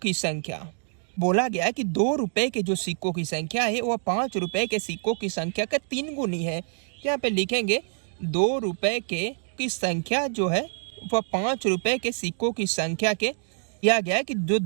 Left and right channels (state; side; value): silent; left; digital silence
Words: संख्या। बोला गया है कि 2 रुपये के जो सिक्कों की संख्या है वह 5 रुपये के सिक्कों की संख्या का 3 गुनी है। यहाँ पे लिखेंगे 2 रुपये की संख्या जो है वह 5 रुपये के सिक्कों की संख्या के दिया गया है कि जो